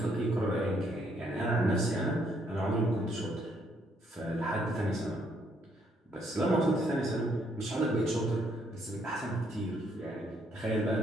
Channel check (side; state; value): both; normal; correlation 0.70